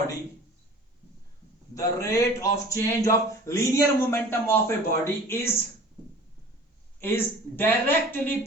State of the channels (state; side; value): normal; both; correlation 0.44